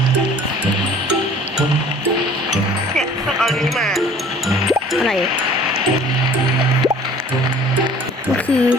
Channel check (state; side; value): normal; both; correlation 0.50